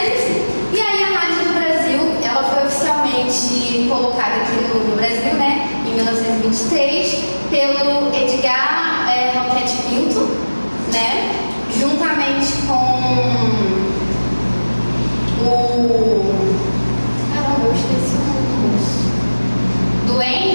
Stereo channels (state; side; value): inverted; both; correlation -1.00